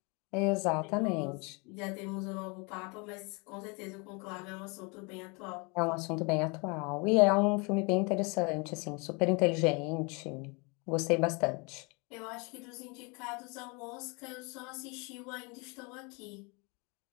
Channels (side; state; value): right; quieter; 30.7 dB